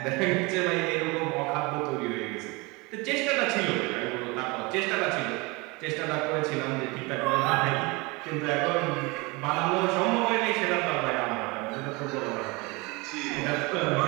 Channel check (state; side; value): quieter; left; 26.0 dB